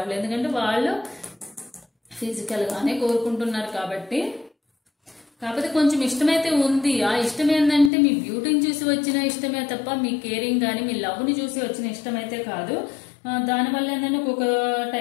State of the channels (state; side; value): drops out; right; at 7.9 s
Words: ఎందుకంటే వాళ్ళు ఫిజికల్ గానే కోరుకుంటున్నారు కాబట్టి. కాకపోతే కొంచెం ఇష్టమైతే ఉంది. ఆ ఇష్టం ఏంటంటే మీ బ్యూటీని చూసి వచ్చిన ఇష్టమే తప్ప మీ కేరింగ్ కానీ మీ లవ్ ని చూసి వచ్చిన ఇష్టం అయితే కాదు. దానివల్ల ఏంటంటే ఒక్కొక్క